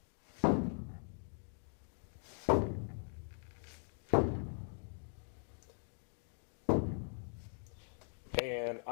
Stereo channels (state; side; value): silent; right; 50 dB below the other